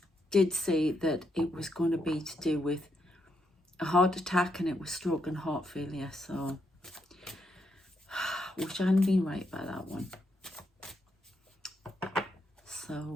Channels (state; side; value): normal; both; correlation 0.79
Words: did say that it was going to be to do with a heart attack, and it was stroke and heart failure. So wish I hadn't been right by that one. So